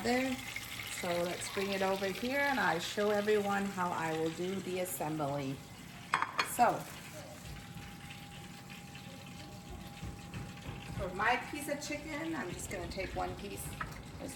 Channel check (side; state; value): both; identical; correlation 1.00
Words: there. So let's bring it over here and I show everyone how I will do the assembly. So, for my piece of chicken, I'm just gonna take one piece. Let's